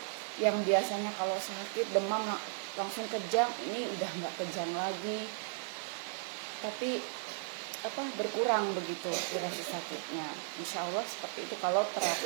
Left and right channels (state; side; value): silent; left; digital silence